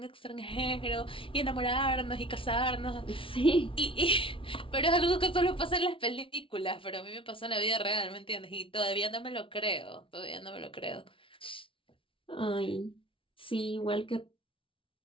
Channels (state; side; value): late; right; 0.25 ms